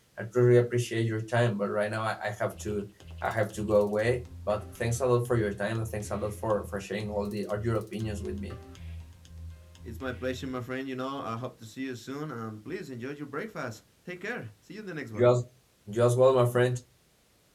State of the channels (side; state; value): both; identical; correlation 1.00